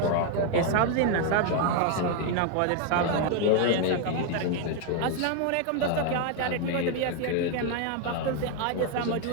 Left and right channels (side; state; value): both; different; correlation 0.01